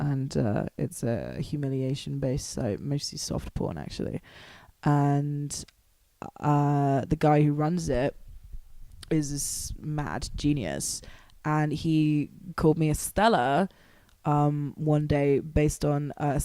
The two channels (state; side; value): identical; both; correlation 1.00